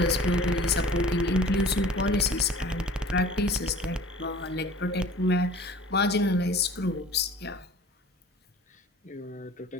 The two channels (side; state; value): both; normal; correlation 0.45